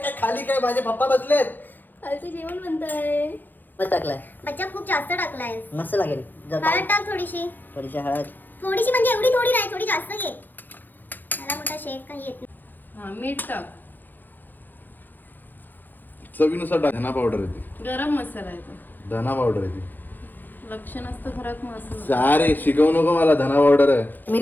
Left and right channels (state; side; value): late; right; 0.088 ms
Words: काय खाली काय, माझे पप्पा बसलेत. खालचं जेवण बनतंय. मस्त टाकलाय, बच्चा खूप जास्त टाकलाय. मस्त लागेल. जर हळद टाक थोडीशी. थोडीशी हळद. थोडीशी म्हणजे एवढी थोडी नाही, थोडी जास्त घे. मला मोठा शेफ काही येत नाही. हा मीठ टाक. चवीनुसार टाक. धना पावडर येते, गरम मसाला येतो. धना पावडर येते. लक्ष नसतं घरात मसाला. अरे शिकवू नको मला, धना पावडर आहे.